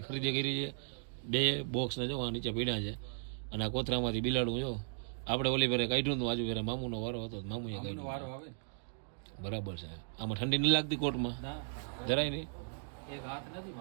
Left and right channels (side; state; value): left; silent; digital silence